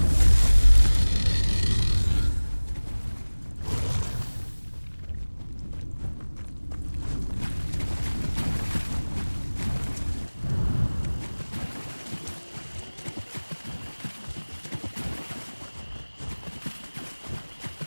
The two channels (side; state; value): both; inverted; correlation -1.00